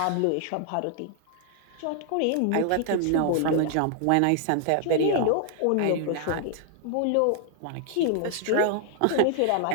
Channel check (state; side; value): different; both; correlation 0.00